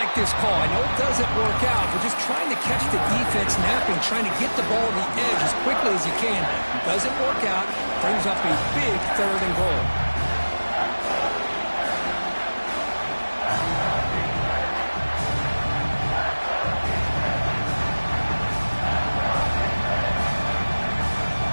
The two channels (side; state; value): both; inverted; correlation -1.00